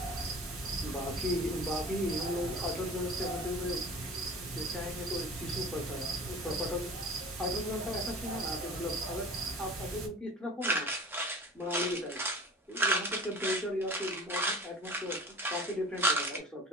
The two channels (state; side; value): normal; both; correlation 0.40